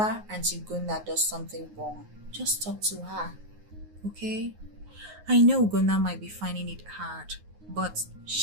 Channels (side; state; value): left; late; 9.5 ms